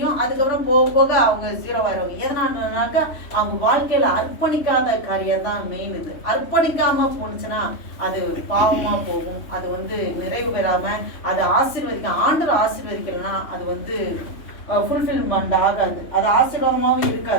அதுக்கப்புறம் போக போக அவங்க 0 ஆயிடுவாங்க. எதனாலனாக்கா அவங்க வாழ்க்கையில அர்ப்பணிக்காத காரியம் தான் மெயின். இது அர்ப்பணிக்காம போனுச்சுன்னா அது பாவமா போகும். அது நிறைவு பெறாம அது ஆண்டவர் ஆசீர்வதிக்கலன்னா அது ஃபுல்ஃபில்மெண்ட் ஆகாது, அது ஆசீர்வாதமாகவும்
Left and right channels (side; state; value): right; late; 3.1 ms